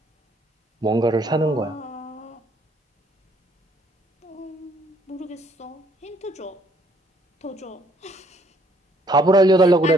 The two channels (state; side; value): normal; both; correlation 0.65